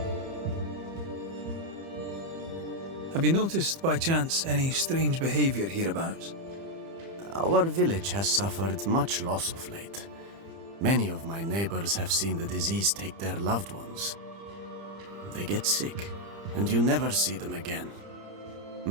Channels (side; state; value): left; late; 30 ms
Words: Have you noticed, by chance, any strange behavior hereabouts? Our village has suffered much loss of late. Many of my neighbors have seen the disease take their loved ones. They get sick, and you never see them again.